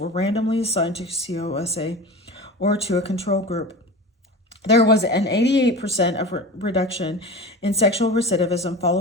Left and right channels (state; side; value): normal; both; correlation 0.32